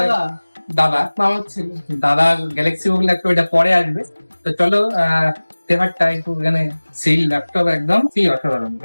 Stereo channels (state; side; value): inverted; both; correlation -1.00